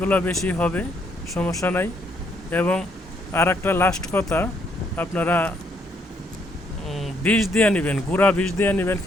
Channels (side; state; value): both; normal; correlation 0.71